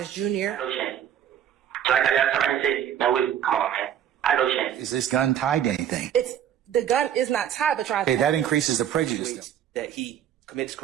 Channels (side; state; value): left; quieter; 10.0 dB